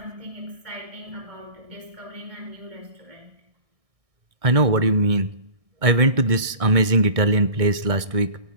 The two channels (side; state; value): left; late; 1.6 ms